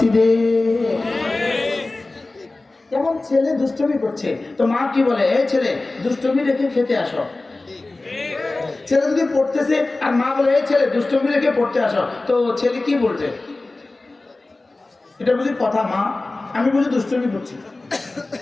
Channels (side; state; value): right; quieter; 3.1 dB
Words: যেমন ছেলে দুষ্টুমি করছে, তো মা কি বলে? এই ছেলে দুষ্টুমি রেখে খেতে আসো। ছেলে যদি পড়তেছে আর মা বলে এই ছেলে দুষ্টুমি রেখে পড়তে আসো, তো ছেলে কি বলছে? এটা বুঝি কথা? মা আমি বুঝি দুষ্টুমি করছি,